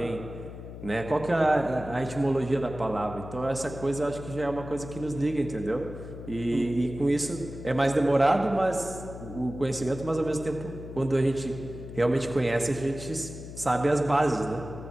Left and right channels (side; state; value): left; noise; hum, 12 dB below the sound